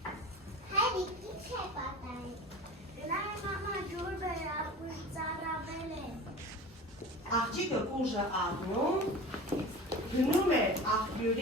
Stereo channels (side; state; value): both; normal; correlation 0.35